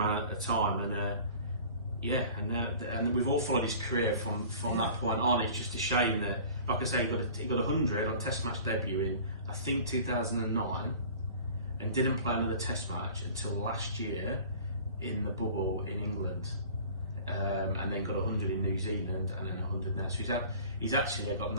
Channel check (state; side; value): inverted; both; correlation -0.44